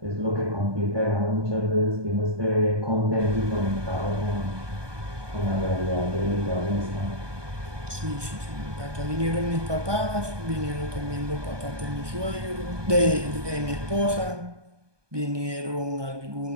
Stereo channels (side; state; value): left; late; 1.2 ms